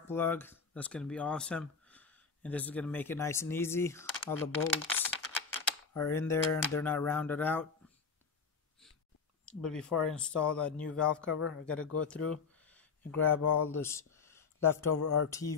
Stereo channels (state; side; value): quieter; right; 5.4 dB